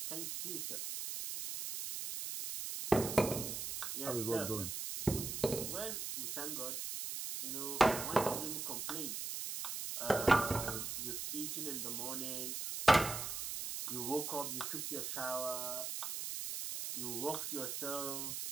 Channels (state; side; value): noise; right; hiss, 4 dB below the sound